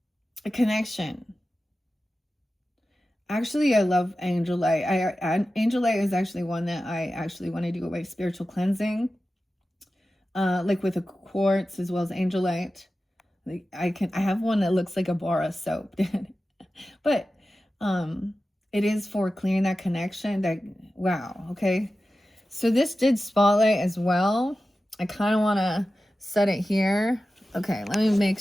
A connection. Actually, I love angel light. Angel light is actually one that I actually want to do my spiritual cleansing. Like with a quartz as well as angel light. Like I have one that looks like a bar of soap. But it is for clearing that connection. That wow, okay. So this did spotlight as well. I kind of want to set it here. Okay, let me make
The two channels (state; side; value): normal; both; correlation 0.94